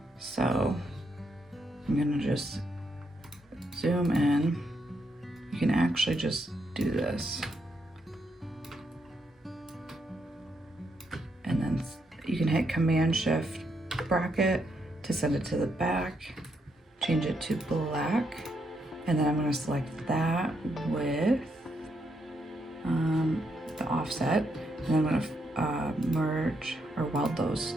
So I'm gonna just zoom in. You can actually just do this. And then you can hit Command Shift bracket to send it to the back, change it to black, and then I'm gonna select that with the offset, and I'm gonna merge or weld those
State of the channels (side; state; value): both; normal; correlation 0.78